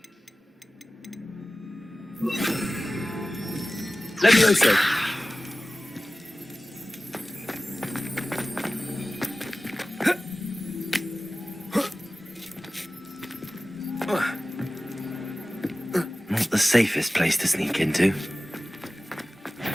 Levioso. Not the safest place to sneak into.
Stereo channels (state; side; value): normal; both; correlation 0.96